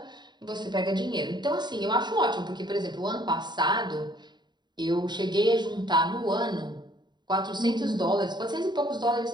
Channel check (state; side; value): late; left; 0.21 ms